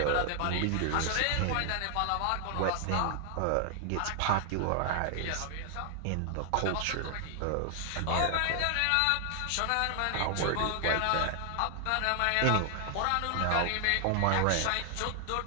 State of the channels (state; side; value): different; both; correlation 0.00